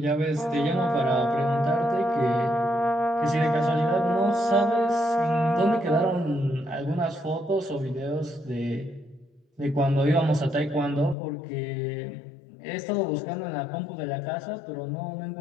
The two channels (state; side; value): drops out; right; at 11.2 s